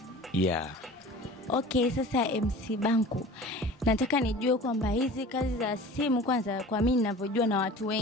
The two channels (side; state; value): both; normal; correlation 0.40